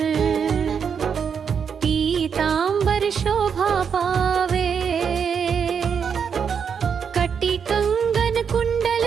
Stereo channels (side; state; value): left; quieter; 6.8 dB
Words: पीतांबर शोभा पावे। कटी कंगन कुंडल